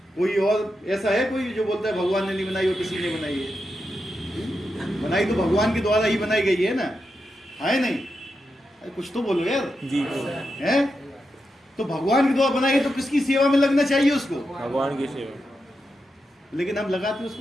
कोई और ऐसा है कोई जो बोलता है भगवान ने नहीं बनाई और किसी ने बनाई है? बनाई तो भगवान के द्वारा ही बनाई गई है ना, है नहीं? अरे कुछ तो बोलो यार जी। है तो भगवान के द्वारा बनाई है, तो किसकी सेवा में लगना चाहिए उसको? भगवान की सेवा। लेकिन हम लगाते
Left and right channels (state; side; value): normal; both; correlation 0.87